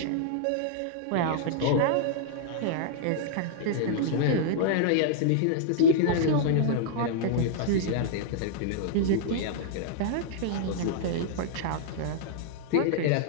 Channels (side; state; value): both; different; correlation -0.01